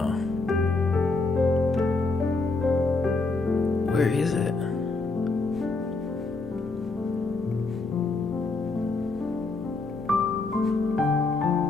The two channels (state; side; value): quieter; right; 3.6 dB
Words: Where is it?